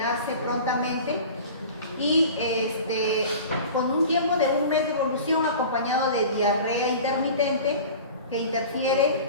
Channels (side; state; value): both; inverted; correlation -0.39